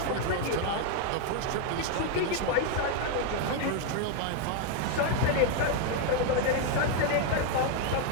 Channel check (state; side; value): different; both; correlation 0.01